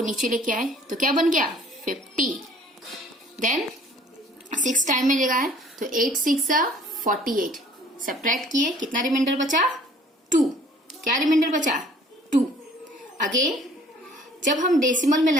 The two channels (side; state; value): both; normal; correlation 0.54